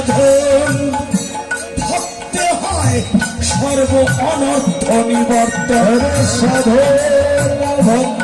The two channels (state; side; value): identical; both; correlation 1.00